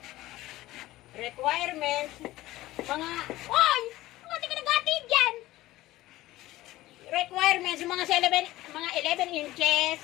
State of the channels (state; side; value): quieter; right; 16.8 dB